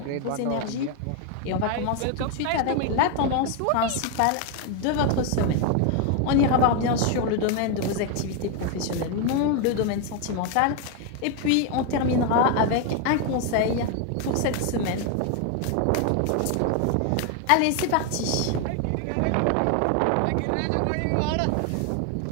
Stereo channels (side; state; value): both; different; correlation 0.01